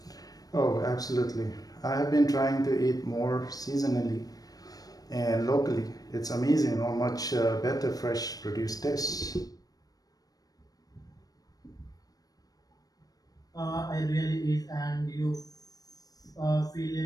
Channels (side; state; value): right; late; 0.18 ms